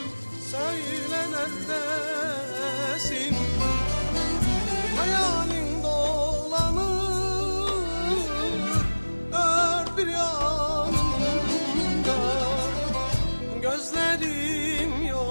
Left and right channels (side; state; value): both; inverted; correlation -1.00